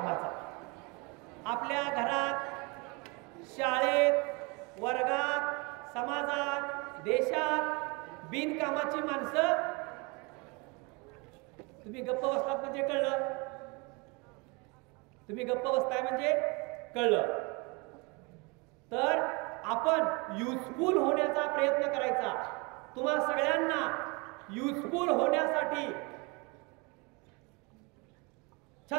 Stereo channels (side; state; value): left; quieter; 28.9 dB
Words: आपल्या घरात, शाळेत, वर्गात, समाजात, देशात बिनकामाची माणसं. तुम्ही गप्प बसलात म्हणजे कळलं, तुम्ही गप्प बसताय म्हणजे कळलं. तर आपण युजफुल होण्याचा प्रयत्न करायचा. तुम्हा सगळ्यांना युजफुल होण्यासाठी